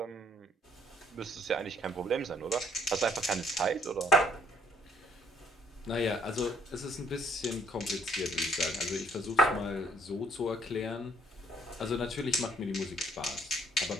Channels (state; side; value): normal; both; correlation 0.63